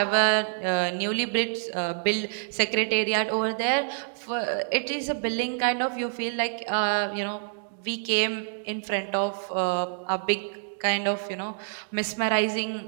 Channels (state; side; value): silent; left; digital silence